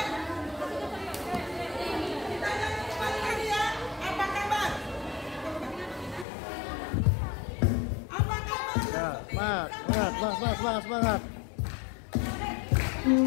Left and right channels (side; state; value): right; drops out; at 6.2 s